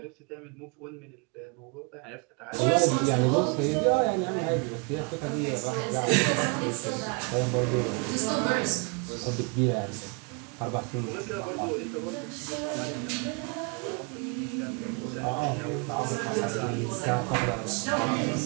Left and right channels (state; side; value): quieter; left; 34.1 dB